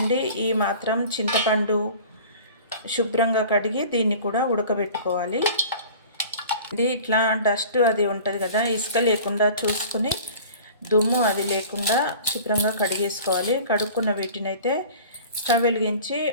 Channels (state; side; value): inverted; both; correlation -0.43